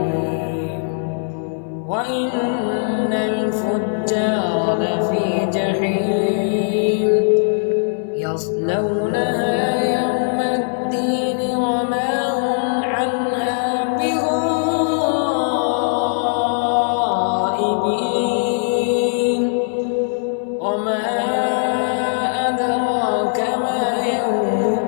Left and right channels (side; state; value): right; silent; 58 dB below the other